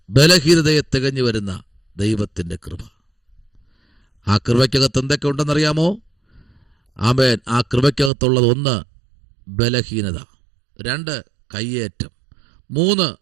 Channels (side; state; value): left; drops out; at 8.1 s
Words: ബലഹീനതയെ തികഞ്ഞു വരുന്ന ദൈവത്തിൻ്റെ കൃപ. ആ കൃപയ്ക്കകത്ത് എന്തൊക്കെ ഉണ്ടെന്നറിയാമോ? ആമേൻ. ആ കൃപയ്ക്കകത്തുള്ളത് 1 ബലഹീനത, 2 കയ്യേറ്റം, 3